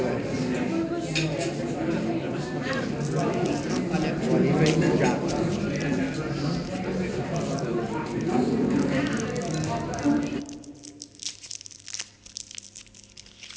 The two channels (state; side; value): identical; both; correlation 1.00